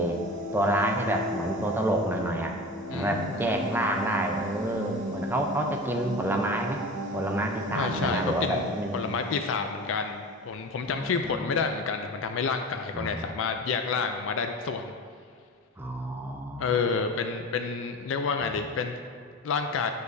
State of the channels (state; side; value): normal; both; correlation 0.32